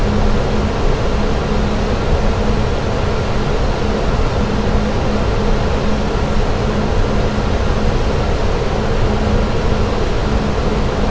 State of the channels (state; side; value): identical; both; correlation 1.00